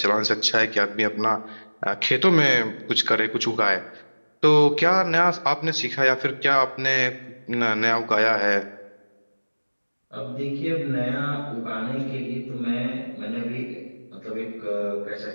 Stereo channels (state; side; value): inverted; both; correlation -1.00